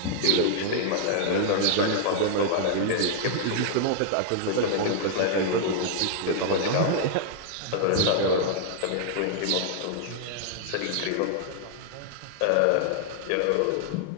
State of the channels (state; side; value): different; both; correlation -0.01